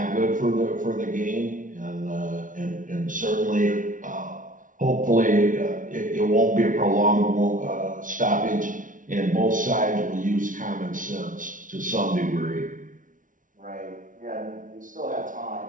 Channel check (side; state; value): left; late; 0.38 ms